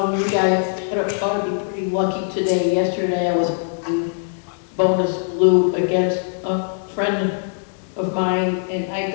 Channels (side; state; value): right; silent; 58 dB below the other